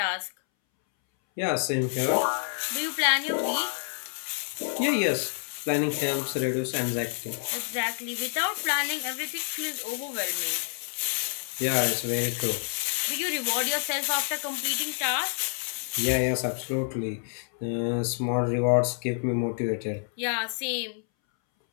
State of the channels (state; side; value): silent; right; 59 dB below the other